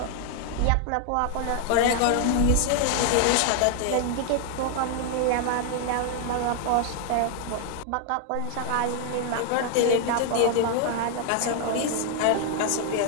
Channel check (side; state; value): both; different; correlation 0.00